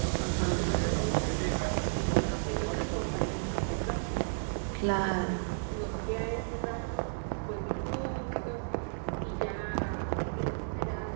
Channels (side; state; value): left; silent; digital silence